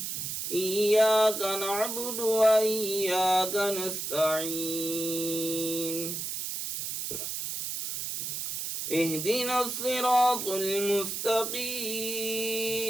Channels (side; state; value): right; noise; hiss, 4 dB below the sound